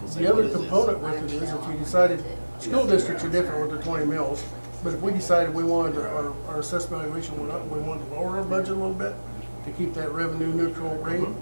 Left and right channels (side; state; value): both; inverted; correlation -1.00